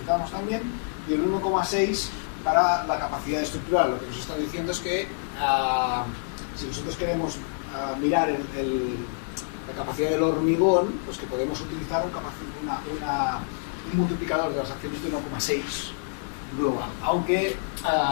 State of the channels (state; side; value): silent; right; 60 dB below the other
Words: también. Y el 1,6 para la capacidad estructural. Lo que nos está diciendo es que si nosotros queremos mirar la capacidad del hormigón, pues que podemos utilizar un multiplicador de las acciones de 1,6 global. Aunque